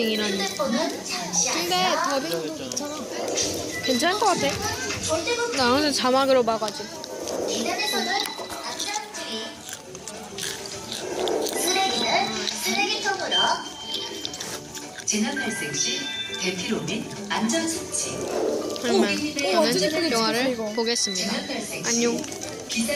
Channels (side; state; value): both; identical; correlation 1.00